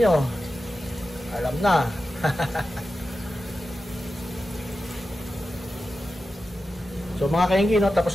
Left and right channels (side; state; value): both; normal; correlation 0.92